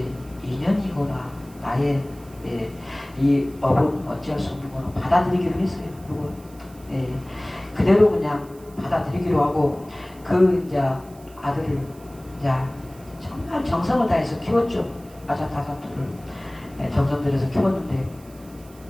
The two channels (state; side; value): noise; right; hiss, 25 dB below the sound